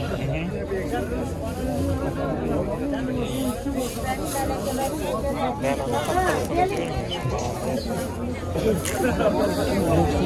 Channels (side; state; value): both; identical; correlation 1.00